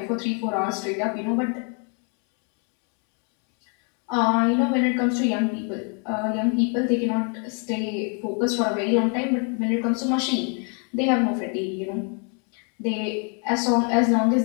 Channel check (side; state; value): right; quieter; 38.7 dB